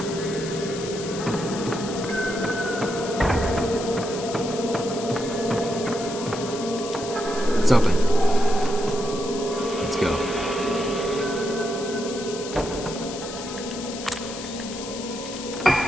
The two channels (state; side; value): noise; left; hiss, 11 dB below the sound